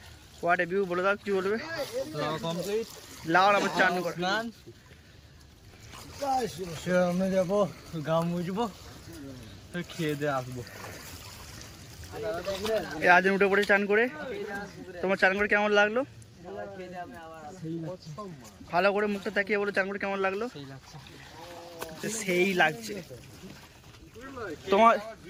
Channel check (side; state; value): both; identical; correlation 1.00